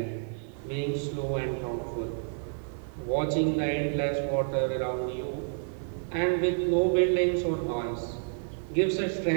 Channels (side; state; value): left; silent; 56 dB below the other